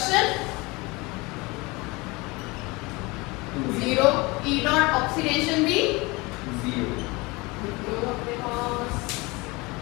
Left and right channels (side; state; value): right; quieter; 24.4 dB